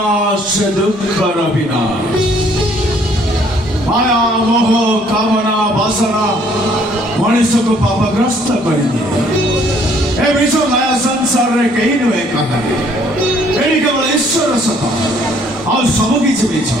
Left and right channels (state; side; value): normal; both; correlation 0.62